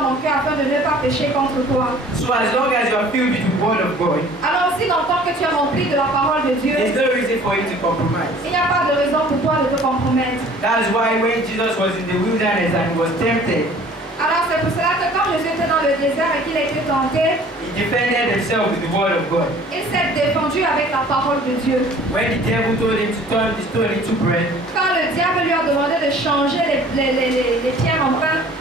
mon cœur afin de ne pas pécher contre toi. So as long as you are filled with the word of God, Alors aussi longtemps que tu es rempli de la parole de Dieu, there's no reason for you to compromise. il n'y a pas de raison pour toi de te compromettre. That's why when Jesus was in the wilderness and he was tempted, Alors c'est pour cela que quand Jésus était dans le désert et qu'il a été tenté, he defended himself with the word of God. il s'est défendu avec la parole de Dieu. When the devil told him to turn the stone into bread, Quand le diable lui a demandé de changer les pierres en pain,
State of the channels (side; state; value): both; normal; correlation 0.50